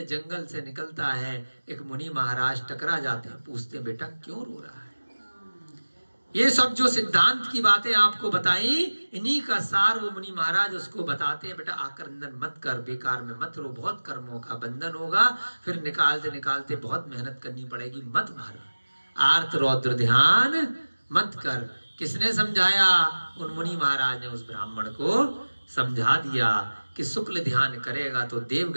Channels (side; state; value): both; inverted; correlation -1.00